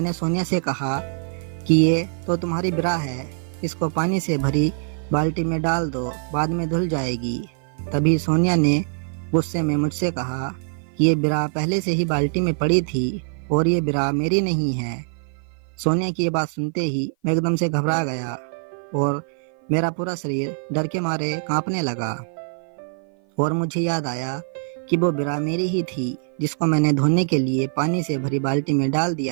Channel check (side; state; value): left; silent; 55 dB below the other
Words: सोनिया से कहा कि ये तो तुम्हारी बिरा है, इसको पानी से भरी बाल्टी में डाल दो, बाद में धुल जाएगी। तभी सोनिया ने गुस्से में मुझसे कहा कि ये बिरा पहले से ही बाल्टी में पड़ी थी और ये बिरा मेरी नहीं है। सोनिया की ये बात सुनते ही मैं एकदम से घबरा गया और मेरा पूरा शरीर डर के मारे कांपने लगा और मुझे याद आया कि वो बिरा मेरी ही थी जिसको मैंने धोने के लिए पानी से भरी बाल्टी में डाल